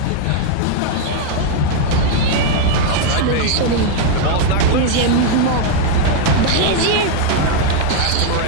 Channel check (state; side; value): different; both; correlation 0.00